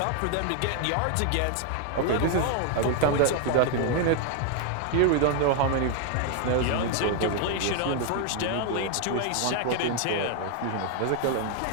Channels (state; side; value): different; both; correlation 0.00